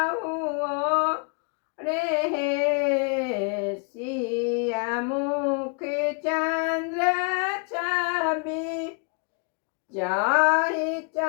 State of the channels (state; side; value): quieter; right; 39.1 dB